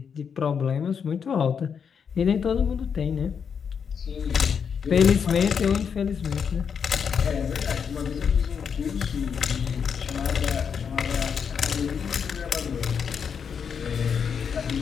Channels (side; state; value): right; quieter; 6.8 dB